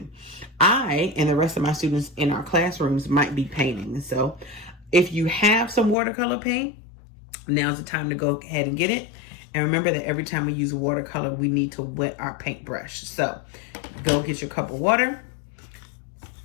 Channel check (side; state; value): right; drops out; at 6.0 s